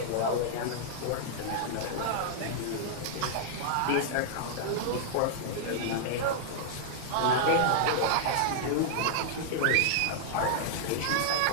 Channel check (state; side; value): different; both; correlation -0.01